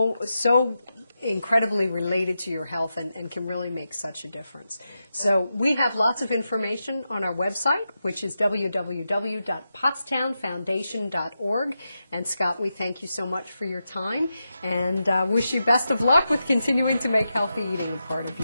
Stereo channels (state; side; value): inverted; both; correlation -0.89